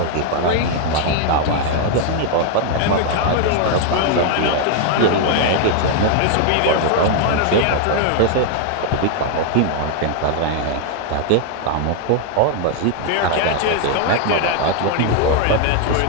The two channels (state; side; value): different; both; correlation 0.00